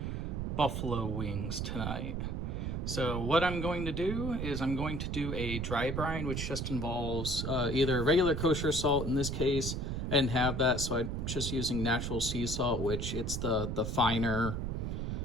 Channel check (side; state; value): right; noise; rumble, 2 dB below the sound